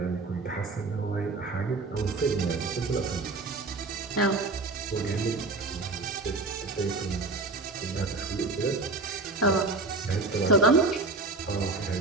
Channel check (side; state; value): left; quieter; 3.5 dB